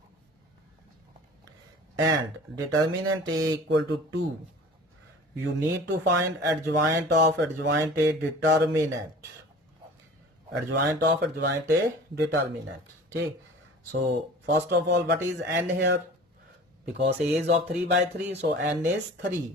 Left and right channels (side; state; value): both; normal; correlation 0.42